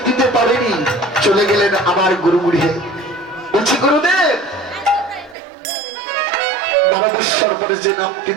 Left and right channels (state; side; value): drops out; left; at 5.4 s